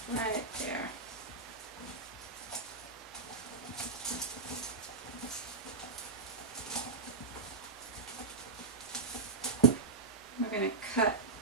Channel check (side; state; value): left; quieter; 4.2 dB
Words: right there. We're going to cut,